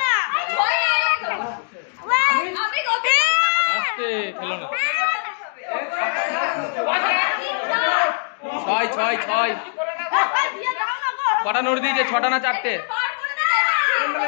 আসতে খেলো না। 6 6 6 কটা নোট দিয়েছে, 6টা না 4টে?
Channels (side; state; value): right; silent; digital silence